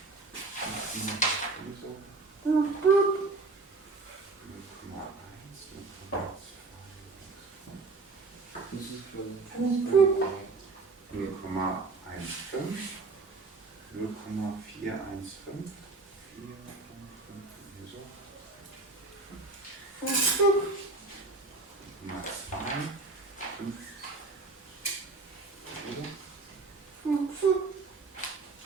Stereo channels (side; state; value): left; quieter; 3.7 dB